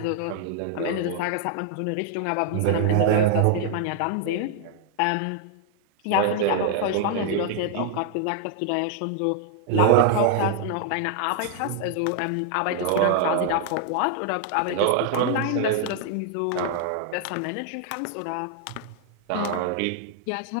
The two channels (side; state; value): both; different; correlation 0.00